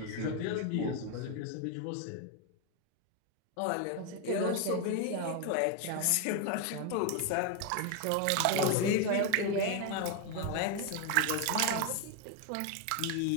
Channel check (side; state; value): both; different; correlation 0.01